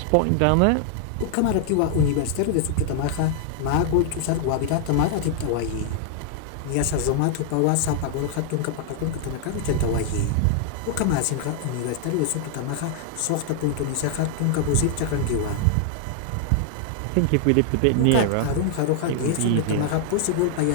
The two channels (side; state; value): both; different; correlation 0.00